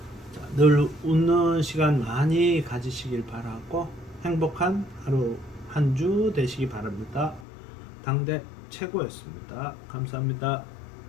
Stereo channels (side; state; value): right; drops out; at 7.5 s